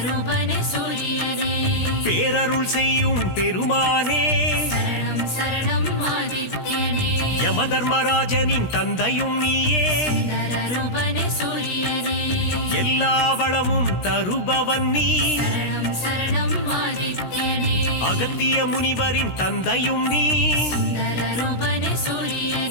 சூரியனே பேரருள் செய்யும் பெருமானே சரணம் சரணம் ஆதித்யனே யமதர்மராஜனின் தந்தையும் நீயே சுந்தரரூபனே சூரியனே எல்லா வளமும் தருபவன் நீ சரணம் சரணம் ஆதித்யனே அகத்திய முனிவரின் தந்தையும் நீ சுந்தரரூபனே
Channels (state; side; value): late; right; 17 ms